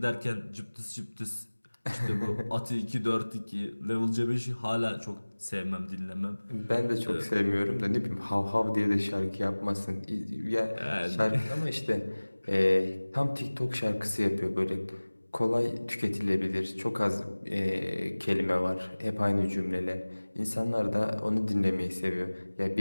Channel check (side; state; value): both; inverted; correlation -1.00